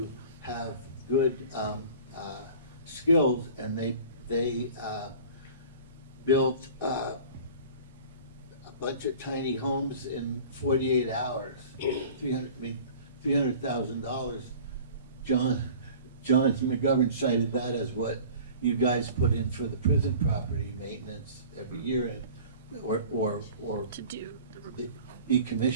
have good skills, and they built a bunch of tiny homes in 48 hours. $300,000. John McGovern cited that as what you guys put in for the prison property maintenance every year, or to do the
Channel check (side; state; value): both; inverted; correlation -0.43